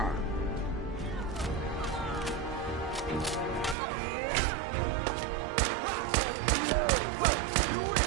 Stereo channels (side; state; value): left; drops out; at 3.8 s